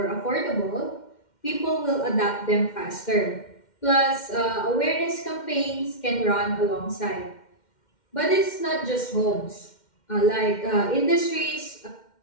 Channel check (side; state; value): right; late; 2.1 ms